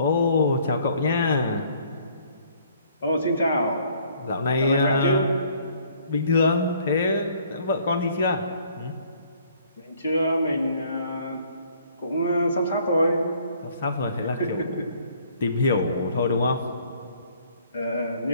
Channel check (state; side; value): inverted; both; correlation -0.61